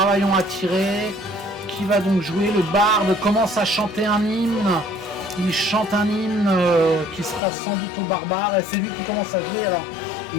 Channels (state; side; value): drops out; right; at 7.4 s